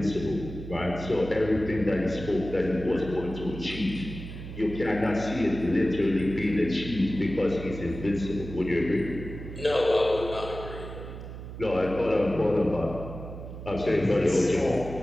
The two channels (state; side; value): noise; right; hum, 11 dB below the sound